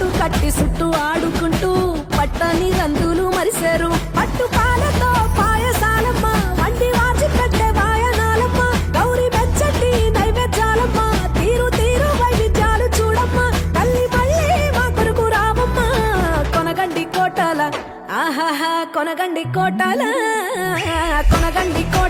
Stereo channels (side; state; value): both; identical; correlation 1.00